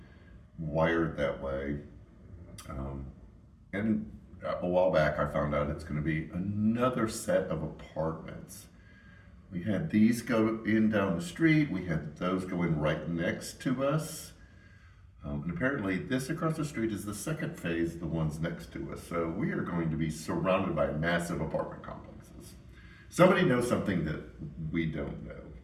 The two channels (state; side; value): identical; both; correlation 1.00